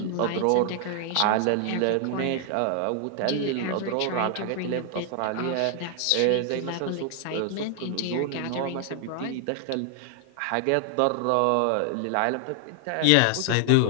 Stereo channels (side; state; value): both; different; correlation 0.00